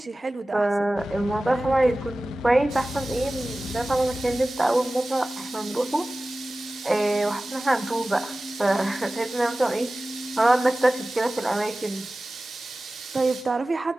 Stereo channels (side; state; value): both; normal; correlation 0.97